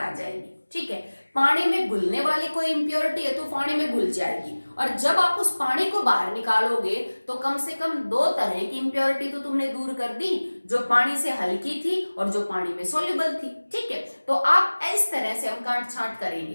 जाएगी, ठीक है। पानी में घुलने वाली कोई इंप्योरिटी है तो पानी में घुल जाएगी, और जब आप उस पानी को बाहर निकालोगे तो कम से कम दो तरह की इंप्योरिटी तो तुमने दूर कर दी, जो पानी से हल्की थी और जो पानी में सोल्यूबल थी, ठीक है। तो आप इस तरह से हम काट छांट करेंगे।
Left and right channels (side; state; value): both; inverted; correlation -1.00